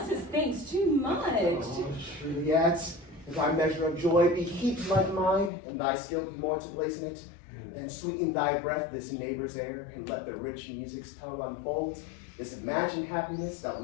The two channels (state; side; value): drops out; right; at 5.5 s